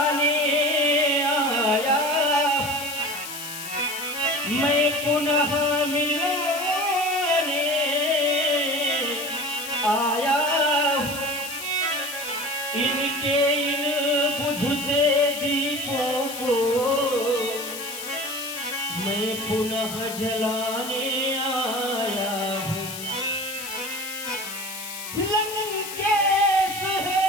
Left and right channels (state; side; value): noise; left; hiss, 9 dB below the sound